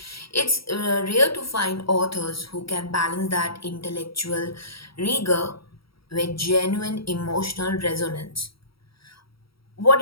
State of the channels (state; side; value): late; right; 0.75 ms